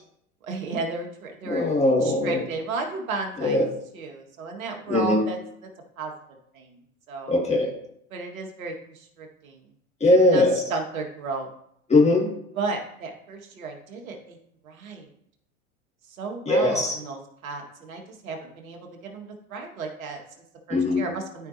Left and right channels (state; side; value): normal; both; correlation 0.48